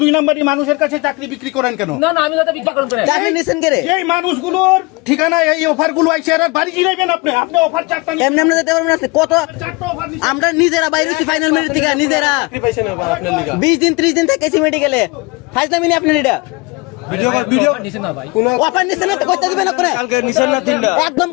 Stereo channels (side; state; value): right; quieter; 25.7 dB